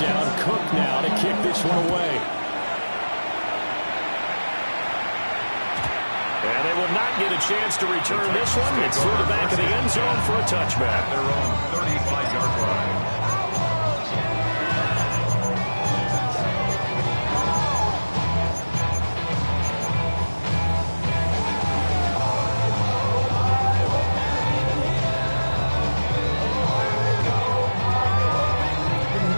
Cook now to kick this one away. And they will not get a chance to return this one. It's through the back of the end zone for a touchback. Their own 35-yard line.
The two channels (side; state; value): both; inverted; correlation -1.00